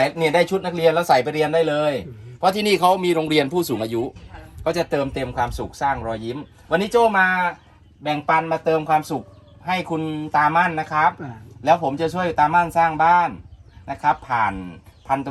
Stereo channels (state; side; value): identical; both; correlation 1.00